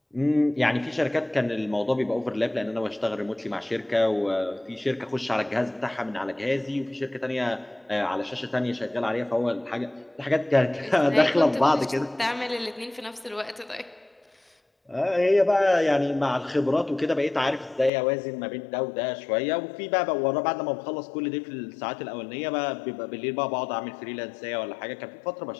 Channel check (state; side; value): drops out; right; at 17.9 s